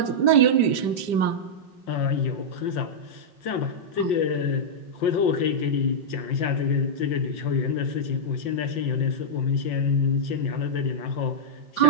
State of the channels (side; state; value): right; late; 5.0 ms